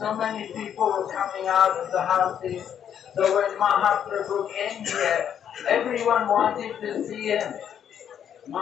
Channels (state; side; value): quieter; right; 9.0 dB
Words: many people were coming out of the houses. So when Mahaprabhu came here, everyone wanted to see him.